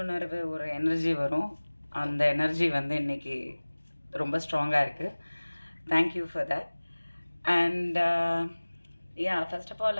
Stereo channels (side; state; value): both; inverted; correlation -1.00